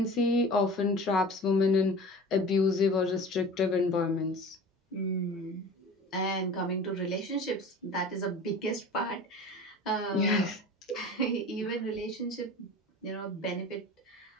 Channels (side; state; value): both; normal; correlation 0.38